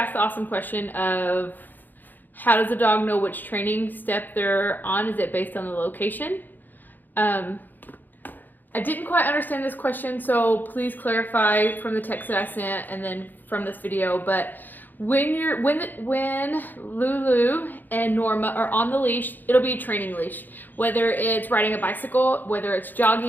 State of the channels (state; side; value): late; right; 0.087 ms